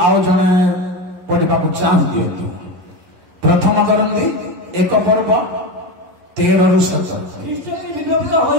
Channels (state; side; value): late; left; 11 ms